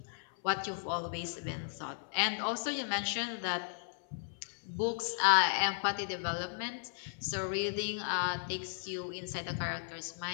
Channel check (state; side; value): silent; right; 54 dB below the other